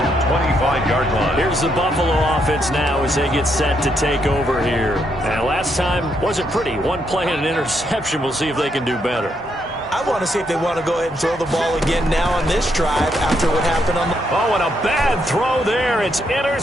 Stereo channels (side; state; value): both; normal; correlation 0.77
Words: 25-yard line. Here's the Buffalo offense now as they get set to take over here. And last time wasn't pretty. One play and an interception. We'll see if they can do better. I want to see if they want to go ahead and throw the ball again now on this drive after what happened on the... Oh, and a bad throw there. It's